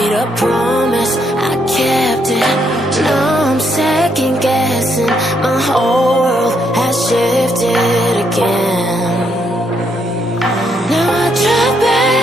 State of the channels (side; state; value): both; normal; correlation 0.75